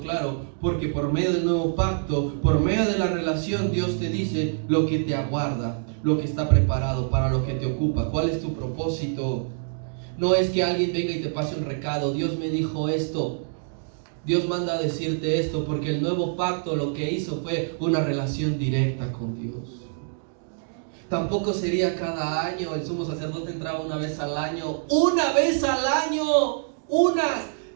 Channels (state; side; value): silent; left; digital silence